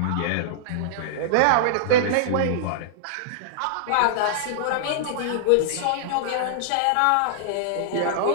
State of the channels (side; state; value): both; different; correlation -0.02